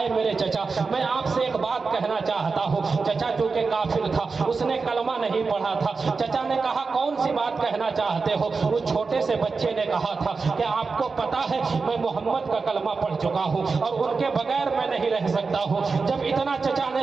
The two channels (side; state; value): left; quieter; 4.5 dB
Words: اے میرے چچا میں آپ سے ایک بات کہنا چاہتا ہوں۔ چچا چونکہ کافر تھا، اس نے کلمہ نہیں پڑھا تھا۔ چچا نے کہا کون سی بات کہنا چاہتے ہو؟ اس چھوٹے سے بچے نے کہا تھا کہ آپ کو پتا ہے میں محمد کا کلمہ پڑھ چکا ہوں اور ان کے بغیر میں نہیں رہ سکتا ہوں۔ جب اتنا چچا